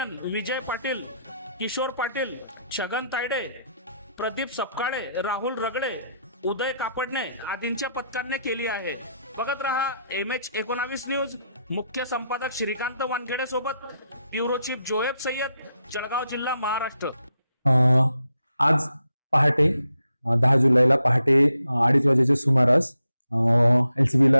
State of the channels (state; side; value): inverted; both; correlation -0.80